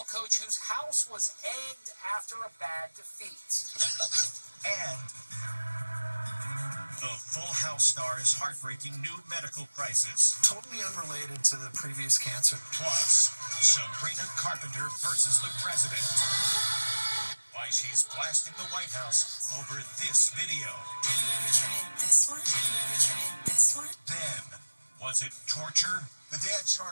coach whose house was egged after a bad defeat. And the Full House star's heartbreaking new medical crisis. Totally unrelated to the previous cancer. Plus, Sabrina Carpenter versus the president. Why she's blasting the White House over this video. Have you ever tried this one? Have you ever tried this one? Then, was it torture? The dad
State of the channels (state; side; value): inverted; both; correlation -1.00